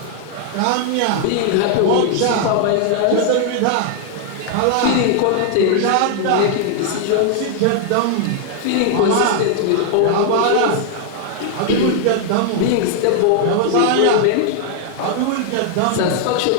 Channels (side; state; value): both; different; correlation 0.00